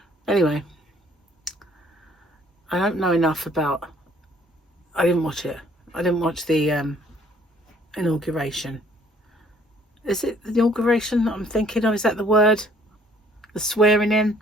Anyway, I don't know enough about. I didn't watch it. I didn't watch the inauguration. Is it the inauguration that I'm thinking of? Is that the word? The swearing in?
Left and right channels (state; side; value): normal; both; correlation 0.60